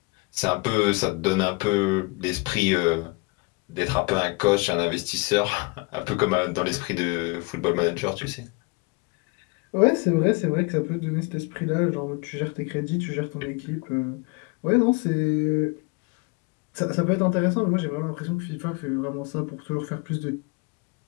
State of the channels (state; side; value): quieter; right; 27.5 dB